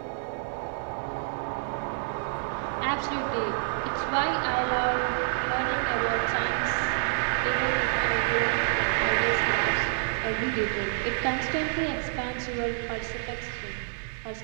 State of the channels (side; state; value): left; silent; digital silence